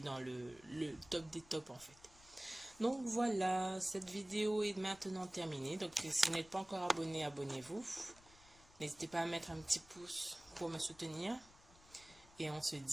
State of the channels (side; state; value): left; noise; rumble, 24 dB below the sound